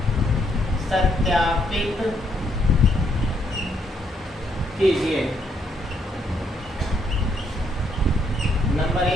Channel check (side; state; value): both; normal; correlation 0.72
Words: 7 सत्यापित कीजिए। नंबर